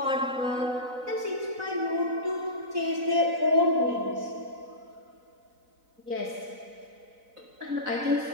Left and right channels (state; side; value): late; left; 4.0 ms